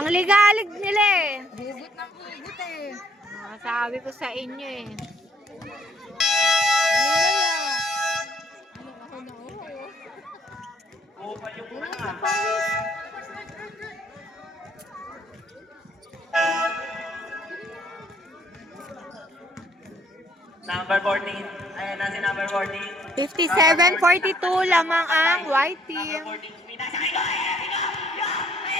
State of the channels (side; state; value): both; normal; correlation 0.65